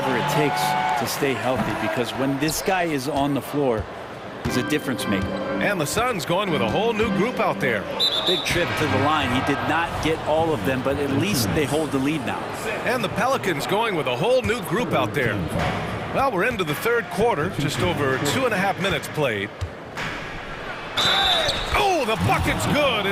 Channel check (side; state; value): both; identical; correlation 1.00